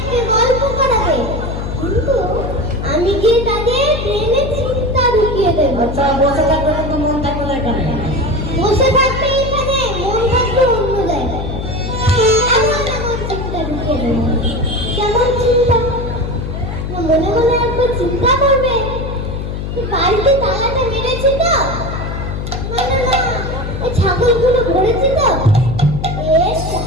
গল্প করাবে, কিন্তু আমি গিয়ে তাদের ব্রেনে চিন্তা ঢুকিয়ে দেবো। আচ্ছা, বসে থাকবে কিন্তু মন থাকবে না এখানে। বসে থাকবে এখানে, মন থাকবে অন্য জায়গায়। এমন এমন চিন্তা ঢুকিয়ে দেবো। কেমন চিন্তা? না, মনে মনে একবার চিন্তা করবে, যে বাড়িতে তালাটা মেরেছি তো, মানে না, এই ছাগলগুলো ঘুরেছি তো,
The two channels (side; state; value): left; noise; hum, 5 dB below the sound